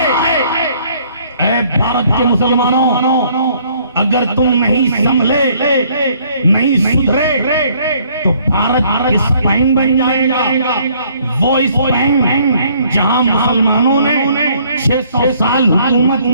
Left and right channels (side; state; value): both; inverted; correlation -0.62